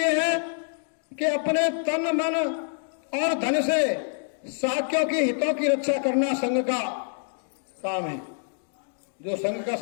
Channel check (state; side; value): silent; right; digital silence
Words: है कि अपने तन मन और धन से शाक्यों के हितों की रक्षा करना संघ का काम है। जो संघ का